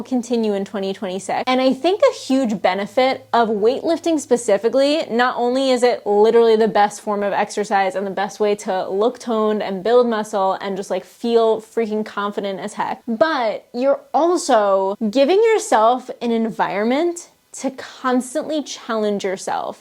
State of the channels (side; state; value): both; identical; correlation 1.00